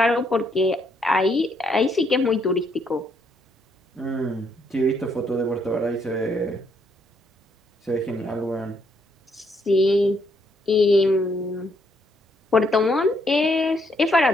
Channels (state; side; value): normal; both; correlation 0.73